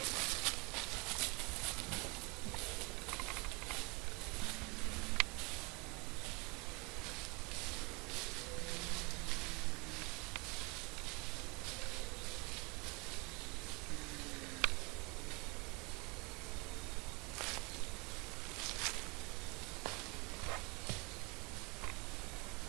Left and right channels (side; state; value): left; quieter; 28.5 dB